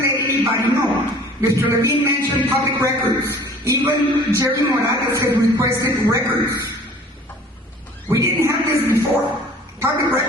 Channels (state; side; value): normal; both; correlation 0.49